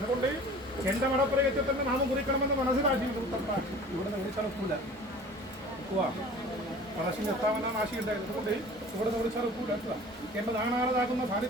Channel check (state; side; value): normal; both; correlation 0.44